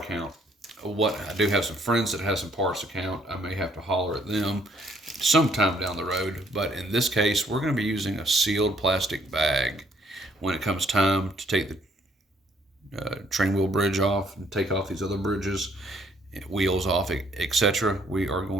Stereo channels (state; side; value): normal; both; correlation 0.66